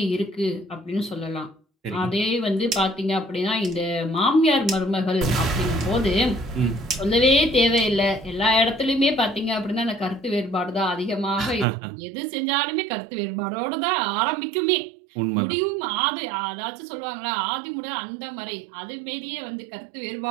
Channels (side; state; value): left; drops out; at 11.7 s